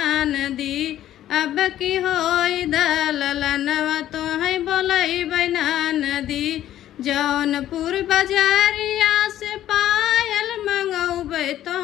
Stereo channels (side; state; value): right; quieter; 12.4 dB